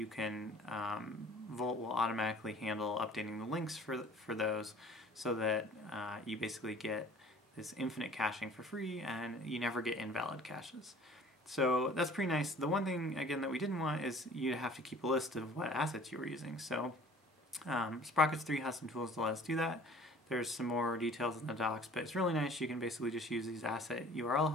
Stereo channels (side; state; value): both; normal; correlation 0.49